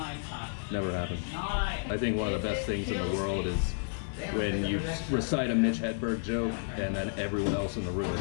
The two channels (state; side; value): silent; right; 57 dB below the other